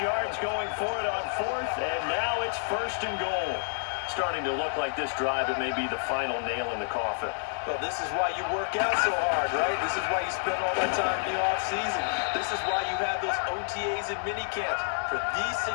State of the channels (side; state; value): right; silent; digital silence